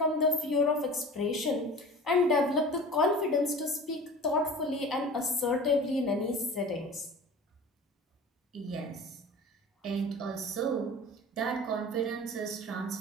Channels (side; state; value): both; normal; correlation 0.38